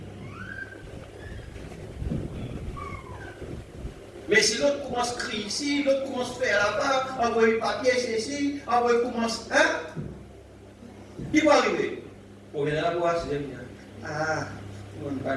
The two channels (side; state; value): both; identical; correlation 1.00